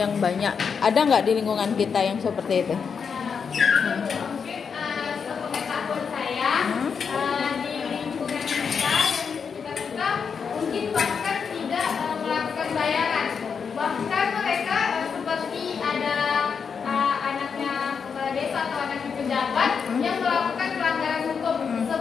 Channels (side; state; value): right; quieter; 6.2 dB